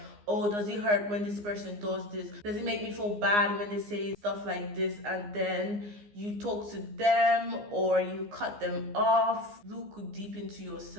oh, does it hurt when this person does this? Does it make me feel bad when they say stuff like this? And then you talk to them or you cut them off. Look deep into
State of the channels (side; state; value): left; late; 15 ms